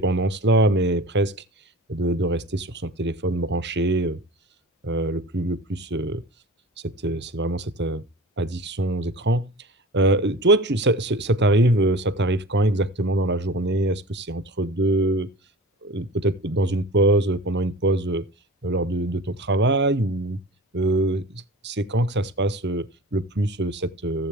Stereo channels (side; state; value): both; normal; correlation 0.37